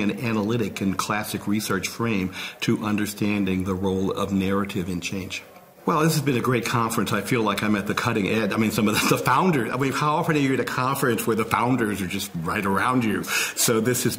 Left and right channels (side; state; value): both; identical; correlation 1.00